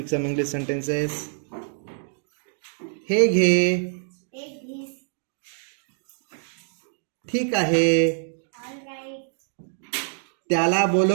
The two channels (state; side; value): silent; left; digital silence